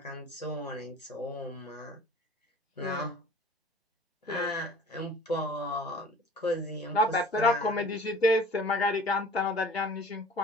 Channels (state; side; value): normal; both; correlation 0.46